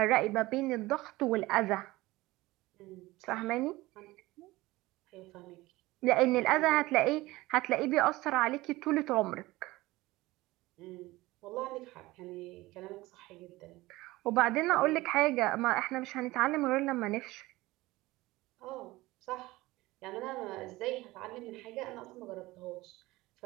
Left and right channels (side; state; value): left; quieter; 19.4 dB